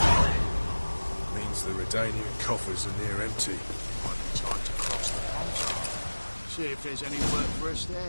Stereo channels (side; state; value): both; inverted; correlation -1.00